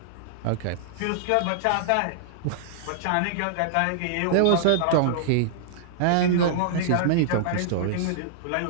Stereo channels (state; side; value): different; both; correlation -0.02